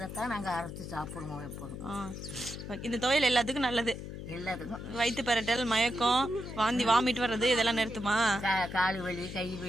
நாங்கள் அரைச்சி சாப்பிடுவோம் எப்போதும். இந்த துவையல் எல்லாத்துக்கும் நல்லது. எல்லாத்துக்கும் வயிற்று பரட்டல், மயக்கம், வாந்தி, வாமிட் வர்றது இதெல்லாம் நிறுத்துமா? கால் வலி, கை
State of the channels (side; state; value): left; noise; hum, 9 dB below the sound